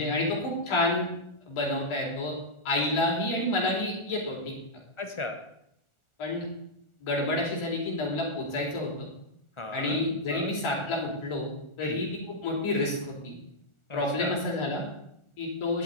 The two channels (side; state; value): right; late; 1.4 ms